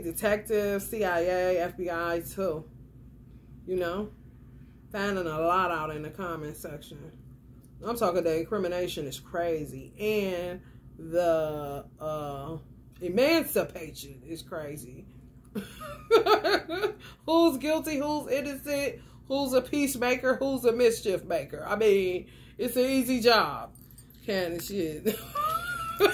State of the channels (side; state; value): both; identical; correlation 1.00